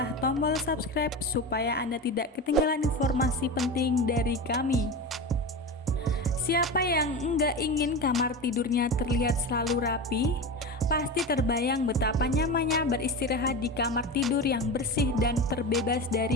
tombol subscribe supaya Anda tidak ketinggalan informasi penting dari kami. Siapa yang enggak ingin kamar tidurnya terlihat selalu rapi? Pasti terbayang betapa nyamannya beristirahat di kamar tidur yang bersih dan terbebas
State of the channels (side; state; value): both; normal; correlation 0.25